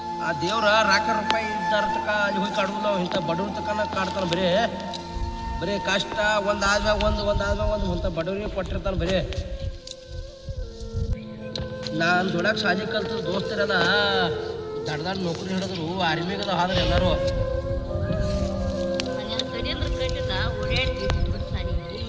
ಆ ದೇವ್ರ ರಾಕ ರೂಪಾಯಿ ಇದ್ದಾರ ತಕ ಅಲ್ಲಿ ಹೋಗಿ ಕಾಡುದು. ನಾವು ಇಂಥ ಬಡವ್ರ ತಕನ ಕಾಡ್ತಾನೆ. ಬರೀ ಕಷ್ಟ ಒಂದಾದ್ಮ್ಯಾಗ ಒಂದು ಅಂತ ಬಡವ್ರಿಗೆ ಕೊಟ್ಟಿರ್ತಾನೆ. ಬರೀ ನಾನು ದೊಡ್ಡಕ್ಕೆ ಶಾಲೆ ಕಲ್ತು ದೋಸ್ತರೆಲ್ಲ ದಡ್ಡ ನೌಕರಿ ಹಿಡಿದ್ರು. ಆರ್ಮಿಗದ ಆದ್ರೆ ಎಲ್ಲರೂ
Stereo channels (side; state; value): both; identical; correlation 1.00